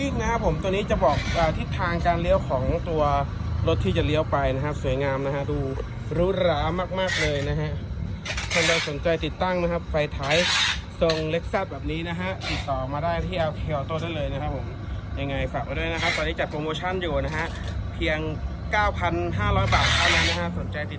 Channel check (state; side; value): identical; both; correlation 1.00